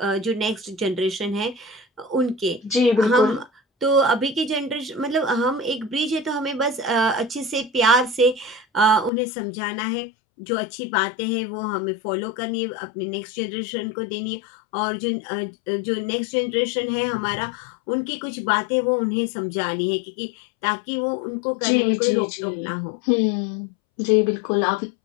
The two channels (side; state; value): right; drops out; at 9.1 s